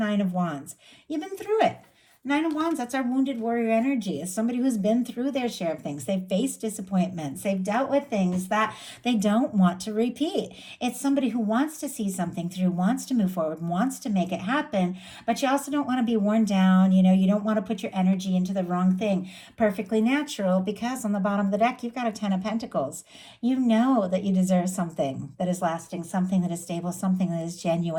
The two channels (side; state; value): both; identical; correlation 1.00